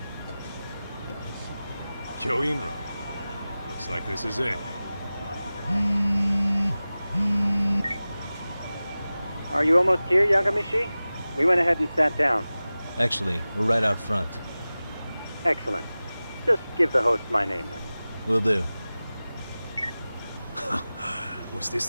Kyoinro. Looks like this is it. Are you almost here, Yagamishi? We went ahead and sat down. Actually, we're right out front. Excellent. Just give the host my name then. Will do. Was this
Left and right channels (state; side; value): inverted; both; correlation -0.97